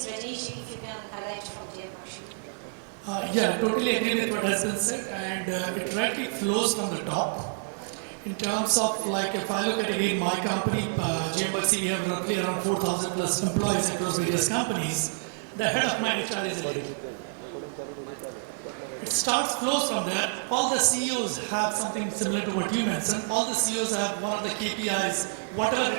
Rajesh, if you can highlight from there, Yeah, I totally agree with what has been said, and it rightly flows from the top. In terms of, like, if I look at again my company, GMBC, we have roughly around 4,000 plus employees across various companies. The head of my HR is a lady. It flows from there. All the CEOs have something similar to what you mentioned. All the CEOs have one of the KPIs, whatever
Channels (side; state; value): left; silent; 58 dB below the other